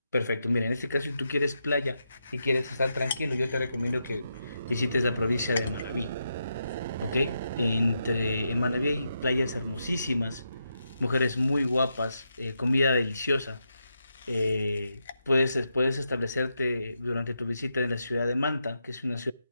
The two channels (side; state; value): both; inverted; correlation -0.84